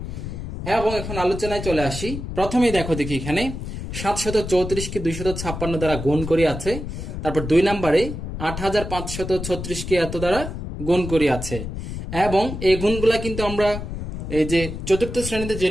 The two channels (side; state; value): left; noise; rumble, 7 dB below the sound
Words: এবং এখন আলোচনায় চলে আসি। প্রথমেই দেখি এখানে 734কে 256 দ্বারা গুণ করি আছে। তারপর 2 নম্বরে 8536কে এত দ্বারা গুণ করি আছে। এবং এই গুণগুলা কিন্তু আমরা এই যে চতুর্থ শ্রেণীতে